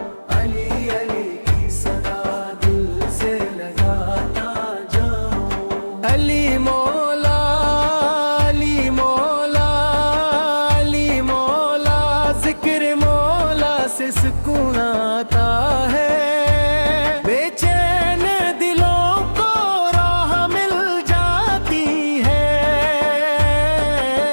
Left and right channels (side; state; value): both; inverted; correlation -1.00